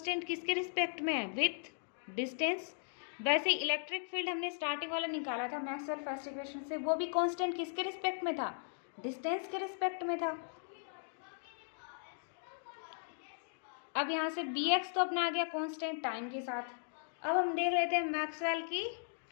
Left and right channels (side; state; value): right; silent; digital silence